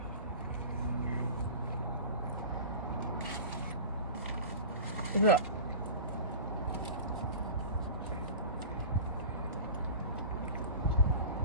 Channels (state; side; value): inverted; both; correlation -0.34